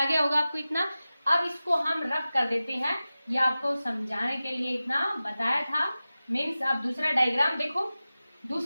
गया होगा आपको इतना। अब इसको हम रफ कर देते हैं, ये आपको समझाने के लिए इतना बताया था। मीन्स आप दूसरा डायग्राम देखो,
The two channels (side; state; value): both; inverted; correlation -0.95